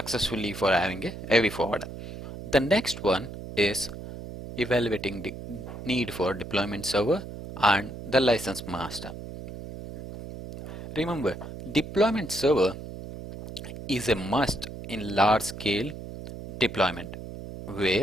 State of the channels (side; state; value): right; noise; hum, 11 dB below the sound